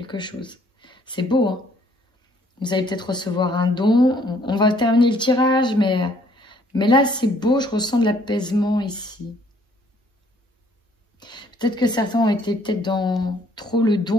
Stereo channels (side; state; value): both; normal; correlation 0.62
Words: chose. C'est beau, hein? Vous allez peut-être recevoir un don. On va terminer le tirage, mais là, c'est beau. Je ressens de l'apaisement ici. Peut-être que certains ont été peut-être dans trop le